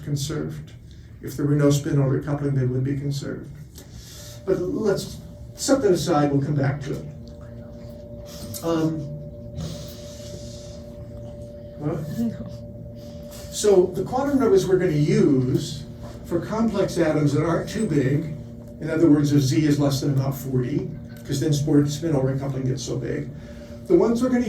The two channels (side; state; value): both; identical; correlation 1.00